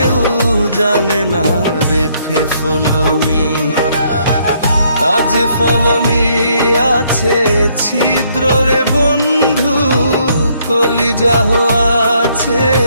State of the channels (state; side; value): inverted; both; correlation -0.69